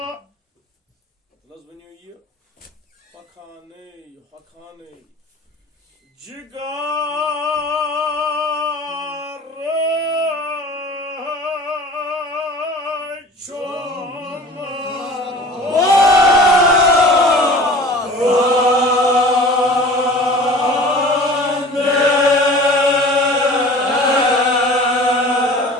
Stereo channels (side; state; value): both; normal; correlation 0.42